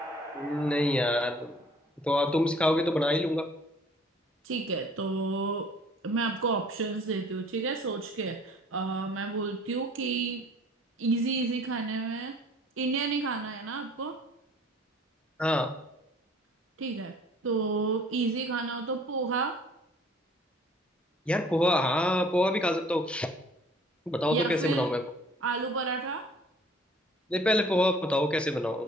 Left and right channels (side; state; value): both; normal; correlation 0.54